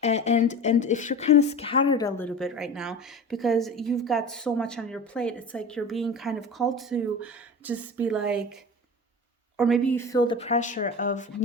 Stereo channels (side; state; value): both; normal; correlation 0.33